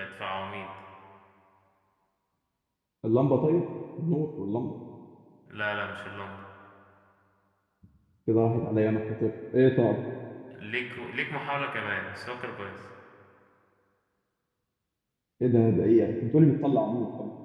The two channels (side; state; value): both; identical; correlation 1.00